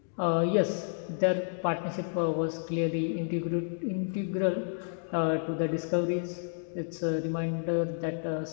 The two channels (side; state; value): right; silent; digital silence